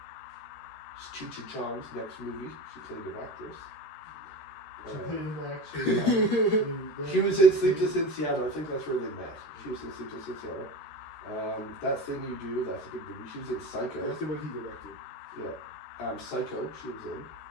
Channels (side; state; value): right; late; 14 ms